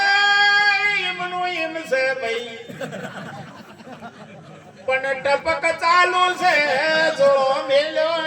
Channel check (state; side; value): identical; both; correlation 1.00